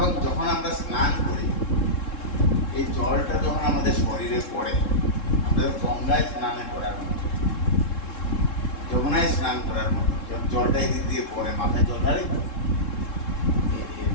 যখন আমরা স্নান করি, এই জলটা যখন আমাদের শরীরে পড়ে, আমাদের গঙ্গায় স্নানে করার মতো, যমুনায় স্নান করার মতো, যখন জলটা এদিক দিয়ে পড়ে, মাথায় জল ঢালি,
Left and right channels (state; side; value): late; right; 3.7 ms